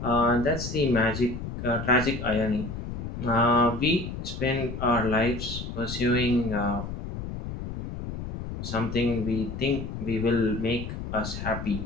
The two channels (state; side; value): noise; left; rumble, 7 dB below the sound